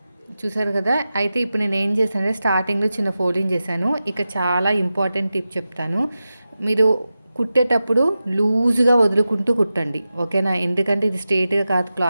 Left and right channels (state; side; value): inverted; both; correlation -0.93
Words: చూసారు కదా! అయితే ఇప్పుడు నేను ఏం చేశానంటే స్టార్టింగ్‌లో చిన్న ఫోల్డింగ్ చేశాను. ఇక చాలా ఇంపార్టెంట్ టిప్ చెప్తాను. మీరు కుట్టేటప్పుడు లూజ్‌గా వదులుకుంటూ కుట్టండి. ఓకేనా? ఎందుకంటే ఇది స్ట్రెయిట్‌గా కాదు